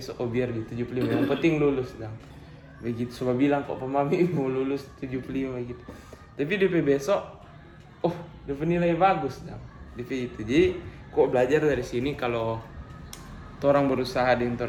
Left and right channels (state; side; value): identical; both; correlation 1.00